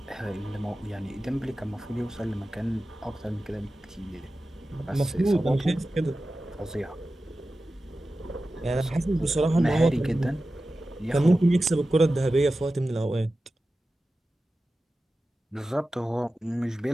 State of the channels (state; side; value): normal; both; correlation 0.94